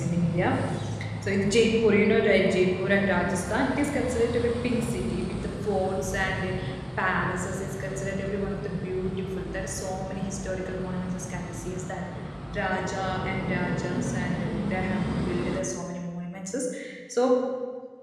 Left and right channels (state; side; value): identical; both; correlation 1.00